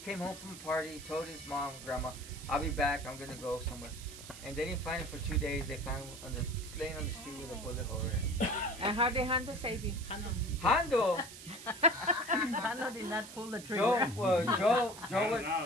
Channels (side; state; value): right; noise; hiss, 14 dB below the sound